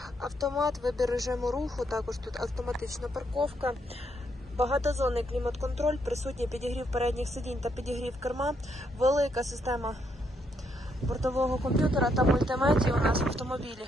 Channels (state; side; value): normal; both; correlation 0.76